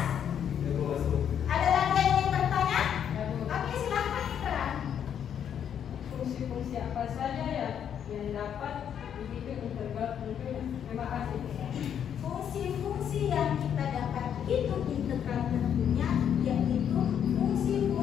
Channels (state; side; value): quieter; right; 8.8 dB